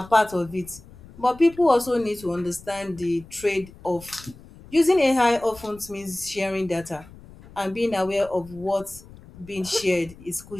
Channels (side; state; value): left; noise; rumble, 20 dB below the sound